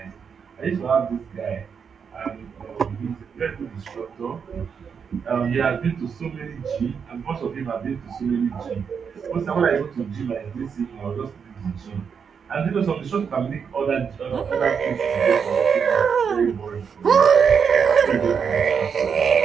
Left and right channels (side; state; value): left; quieter; 6.6 dB